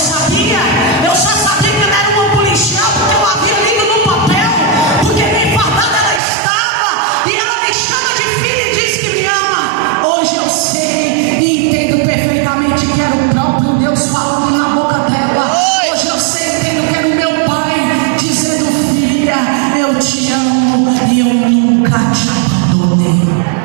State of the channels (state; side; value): drops out; left; at 6.2 s